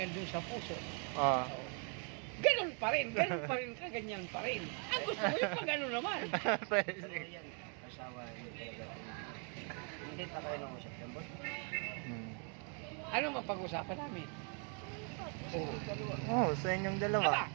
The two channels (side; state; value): left; quieter; 39.2 dB